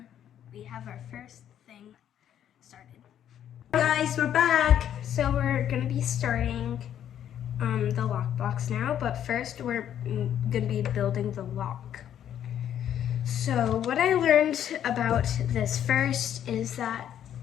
we have our first thing started. Guys, we're back. So we're gonna be starting the lockbox now, but first we're gonna be building the lock. So what I learned about this first is that,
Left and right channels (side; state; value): right; quieter; 10.2 dB